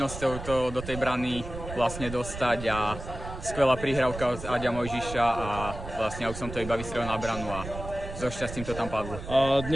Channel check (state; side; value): noise; right; rumble, 10 dB below the sound